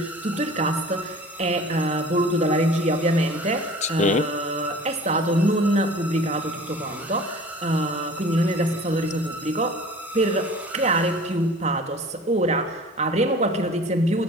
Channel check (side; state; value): both; normal; correlation 0.44